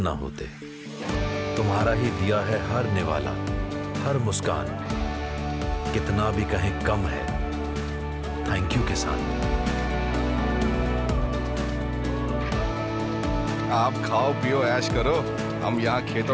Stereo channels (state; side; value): identical; both; correlation 1.00